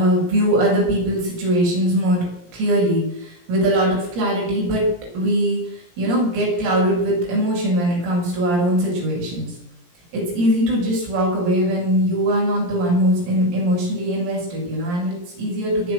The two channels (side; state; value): left; late; 17 ms